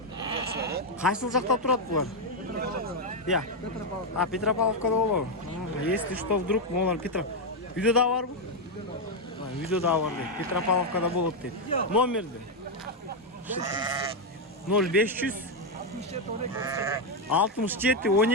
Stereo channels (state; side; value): normal; both; correlation 0.03